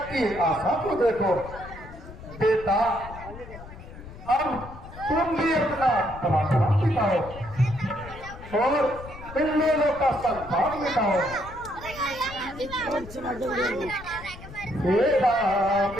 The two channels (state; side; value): noise; left; rumble, 15 dB below the sound